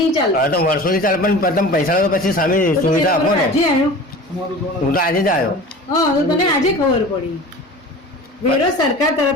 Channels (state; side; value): normal; both; correlation 0.38